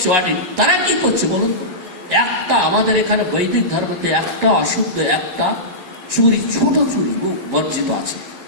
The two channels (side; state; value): left; late; 11 ms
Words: অডিট তারা কি করছে বলুন? একটা আমাদের এখানে বৈদিক ধর্মতে একটা অশুদ্ধ, একটা চুরি, ছোট চুরি বর্জিত আছে।